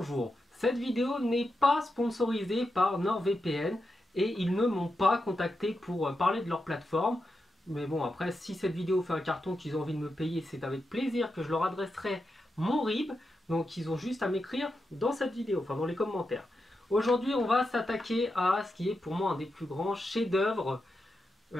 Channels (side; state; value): both; normal; correlation 0.87